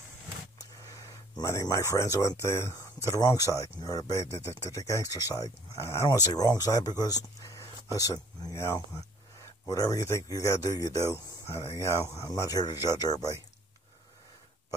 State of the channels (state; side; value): normal; both; correlation 0.56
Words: Many of my friends went to the wrong side, or to the gangster side. I don't want to say wrong side because, listen, whatever you think you got to do, you do. I'm not here to judge everybody.